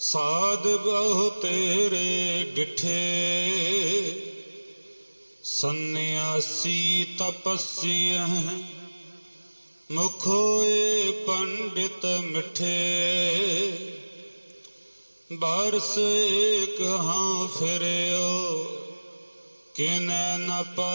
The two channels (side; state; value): both; inverted; correlation -1.00